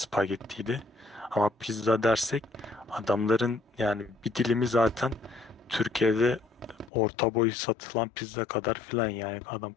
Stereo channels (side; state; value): right; drops out; at 6.9 s